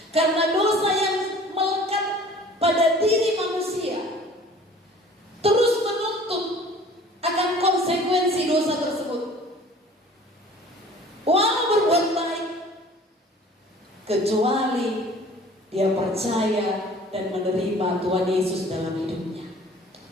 Karena dosa yang melekat pada diri manusia terus menuntut akan konsekuensi dosa tersebut. Walau berbuat baik, kecuali dia percaya dan menerima Tuhan Yesus dalam hidupnya.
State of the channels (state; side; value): normal; both; correlation 0.49